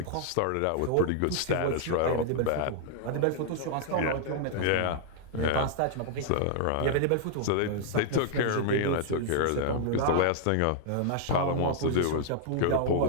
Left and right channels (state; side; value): different; both; correlation -0.01